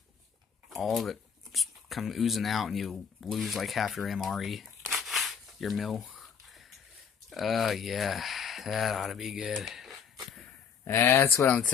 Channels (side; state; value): right; quieter; 7.0 dB